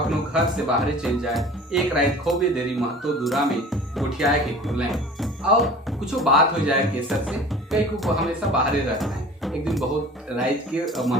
घर से बाहर चल जाए, एक रात खोबे देरी महतो दूरा में गोठियाए के खुले और कुछ बात हो जाए केसर से, कई को हमेशा बाहर रहता है। एक दिन बहुत रात के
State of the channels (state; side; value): normal; both; correlation 0.42